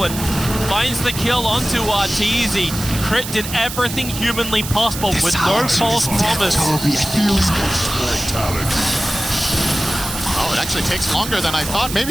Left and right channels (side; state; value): right; noise; hiss, 8 dB below the sound